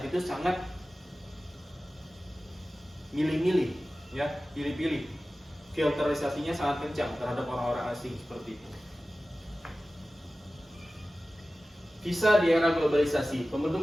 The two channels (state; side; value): normal; both; correlation 0.96